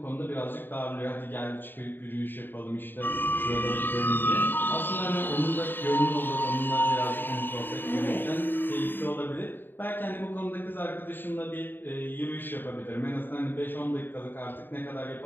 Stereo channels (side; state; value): right; late; 0.094 ms